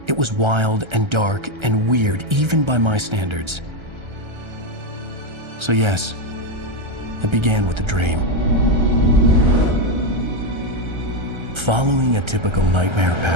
It was wild and dark and weird, even by my standards. So yes, it began with a dream. Following a typical nightmare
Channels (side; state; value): left; late; 1.3 ms